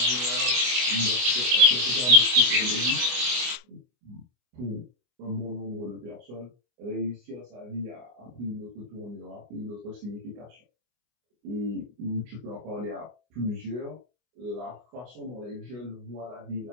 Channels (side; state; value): left; late; 24 ms